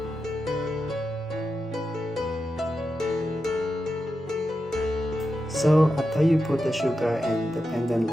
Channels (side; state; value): both; normal; correlation 0.89